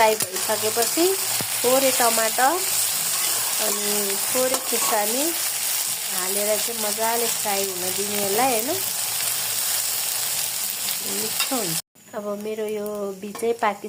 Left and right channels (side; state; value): both; identical; correlation 1.00